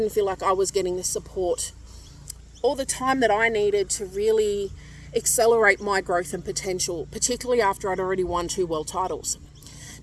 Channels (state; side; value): identical; both; correlation 1.00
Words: feel like I was getting the support all the time that I needed to really accelerate my growth and potential, particularly after I'd already won 2 world titles.